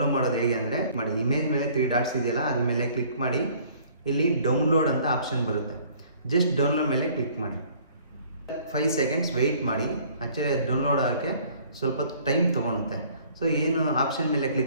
ಮಾಡೋದು ಹೇಗೆ ಅಂದರೆ ಮಾಡಿ, ಇಮೇಜ್ ಮೇಲೆ 3 ಡಾಟ್ಸ್ ಇದೆಯಲ್ಲ ಅದ್ರ ಮೇಲೆ ಕ್ಲಿಕ್ ಮಾಡಿ. ಇಲ್ಲಿ ಡೌನ್ಲೋಡ್ ಅಂತ ಆಪ್ಷನ್ ಬರುತ್ತೆ. ಜಸ್ಟ್ ಡೌನ್ಲೋಡ್ ಮೇಲೆ ಕ್ಲಿಕ್ ಮಾಡಿ. 5 ಸೆಕೆಂಡ್ಸ್ ವೆಯ್ಟ್ ಮಾಡಿ. ಆ್ಯಕ್ಚುಲಿ ಡೌನ್ಲೋಡ್ ಆಗೋಕ್ಕೆ ಸ್ವಲ್ಪ ಟೈಮ್ ತೊಗೊಳುತ್ತೆ. ಸೊ ಏನು ಆಪ್ಷನ್ ಮೇಲೆ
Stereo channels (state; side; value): inverted; both; correlation -0.56